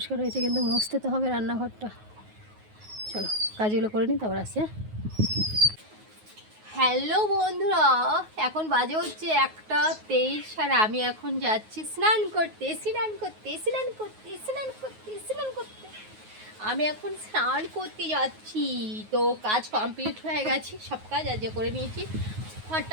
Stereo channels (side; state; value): left; late; 9.4 ms